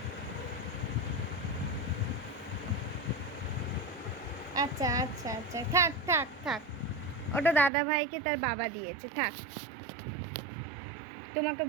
আচ্ছা আচ্ছা আচ্ছা, থাক থাক থাক, ওটা দাদা ভাইকে তার বাবা দিয়েছে, থাক। তোমাকে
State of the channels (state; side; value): drops out; left; at 7.7 s